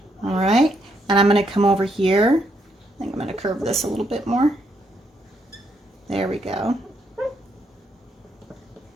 All right. And I'm going to come over here. I think I'm going to curve this a little bit more. There we go.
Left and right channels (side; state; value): both; normal; correlation 0.75